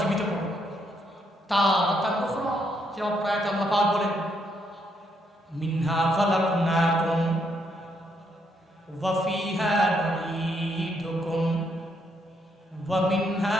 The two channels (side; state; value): both; normal; correlation 0.75